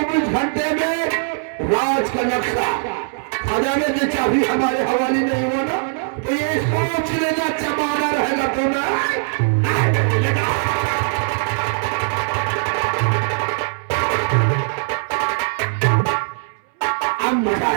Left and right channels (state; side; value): silent; left; 66 dB below the other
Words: घंटे में राज का नक्शा, खजाने की चाबी हमारे हवाले नहीं हुआ ना, तो ये सोच लेना जमाना रहेगा तुम्हें। अब मजा